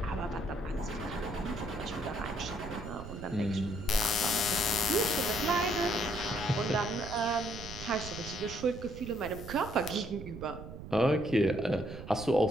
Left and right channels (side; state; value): right; noise; rumble, 11 dB below the sound